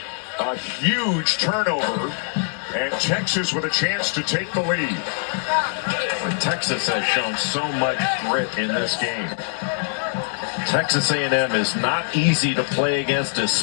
A huge turnover, and Texas with a chance to take the lead. Texas has shown so much grit in this game. Texas A&M is not easy to play against,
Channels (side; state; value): right; silent; 64 dB below the other